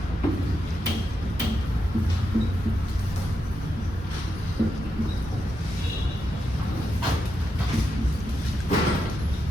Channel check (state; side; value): normal; both; correlation 0.85